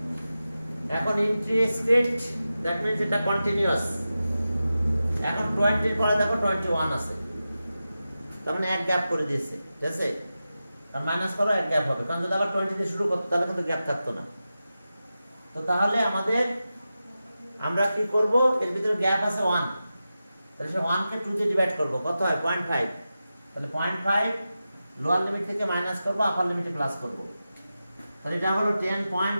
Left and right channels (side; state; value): both; inverted; correlation -0.92